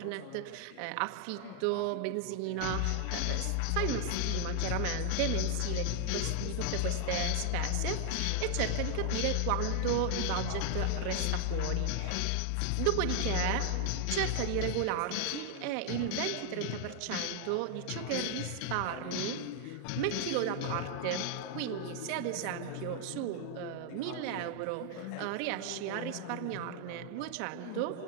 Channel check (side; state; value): both; different; correlation 0.00